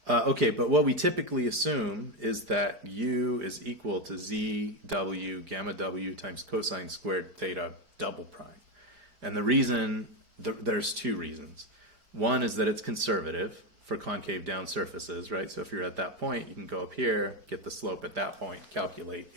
Okay, but what we typically assume is that U is equal to ZW gamma W times cosine squared theta double prime. And the reason, there's two reasons. One is that it's conservative for concave down surfaces, right? So if you're at that point, you can go up here, get the slope at that point, calculate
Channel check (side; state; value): left; late; 4.5 ms